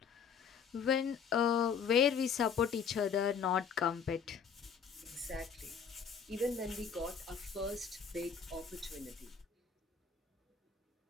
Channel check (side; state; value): right; quieter; 6.7 dB